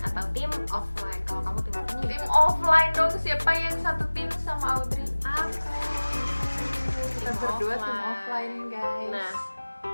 atau tim offline. Kalau kamu tim apa nih? Tim offline dong, siapa yang satu tim sama Audrey? Aku. Kita berdua tim offline, guys. Nah,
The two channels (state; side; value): inverted; both; correlation -1.00